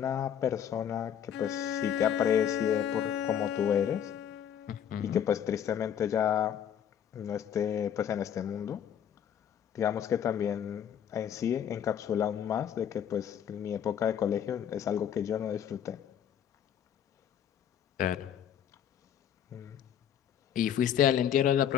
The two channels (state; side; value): quieter; right; 9.1 dB